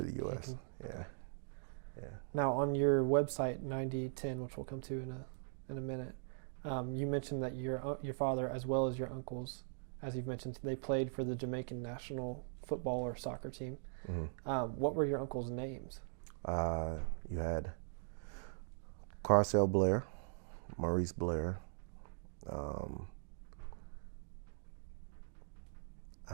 the U.S. Yeah. Now, on your website, 9010, which we'll come to in a minute, you mentioned that your father, as well as your uncles, as you've mentioned, they played for the Jamaican national football or soccer team. Mm-hmm. What were your uncles' names? You had Blair, Maurice Blair.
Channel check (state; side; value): silent; left; digital silence